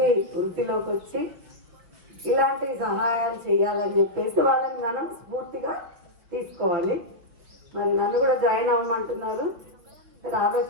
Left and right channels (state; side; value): late; left; 5.9 ms